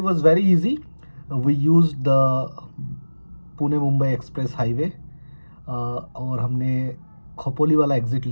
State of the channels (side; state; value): both; inverted; correlation -1.00